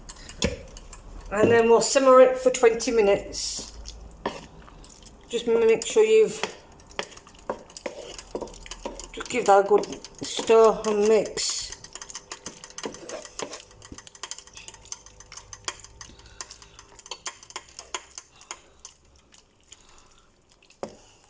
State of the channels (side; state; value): both; identical; correlation 1.00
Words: And then we'll simmer it for 20 minutes. Just make sure you've just give that a good stir and mix.